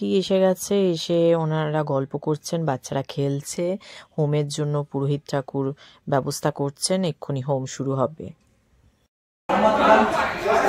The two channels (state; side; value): identical; both; correlation 1.00